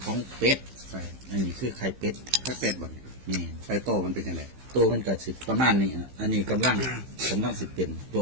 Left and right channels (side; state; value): left; late; 15 ms